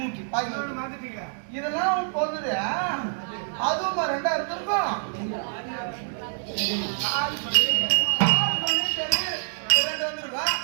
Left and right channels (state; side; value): silent; left; digital silence